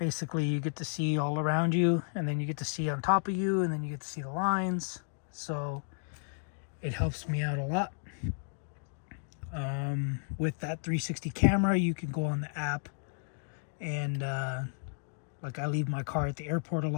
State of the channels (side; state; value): right; silent; 56 dB below the other